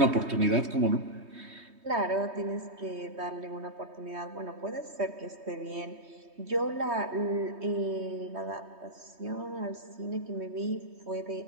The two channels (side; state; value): left; late; 3.2 ms